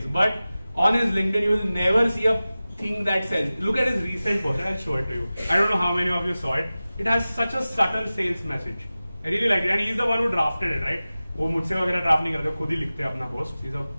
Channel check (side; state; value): both; inverted; correlation -0.96